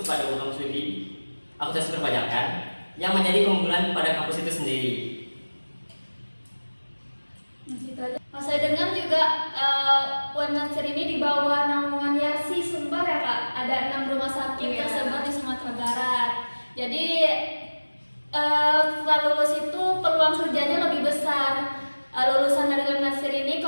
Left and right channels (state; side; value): inverted; both; correlation -1.00